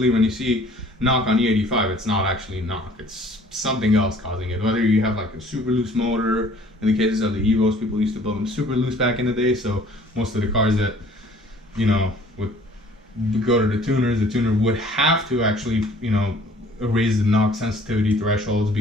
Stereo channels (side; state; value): both; normal; correlation 0.54